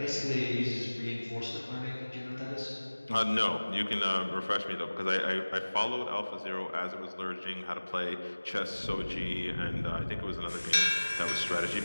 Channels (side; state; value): both; inverted; correlation -1.00